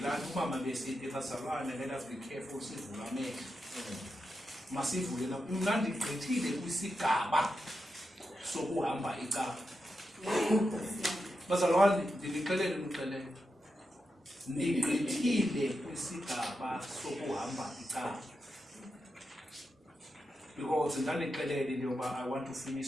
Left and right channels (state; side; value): normal; both; correlation 0.87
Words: umama besithi bazalwane, let us be careful sivula amehlo. Masivule na kumnandi gqithile kwisigaba sokuhamba icala. Bazalwane, ndinixelele umxelele. Ndigqithile kwisigaba sokuhamba icala. Because ndandixelele into yoba I want to finish